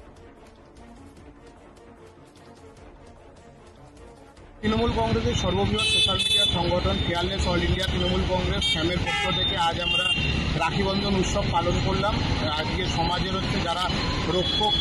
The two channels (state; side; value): identical; both; correlation 1.00